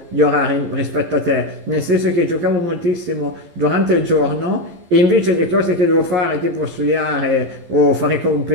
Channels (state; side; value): late; left; 12 ms